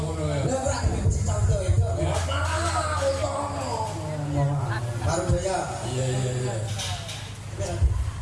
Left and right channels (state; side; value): identical; both; correlation 1.00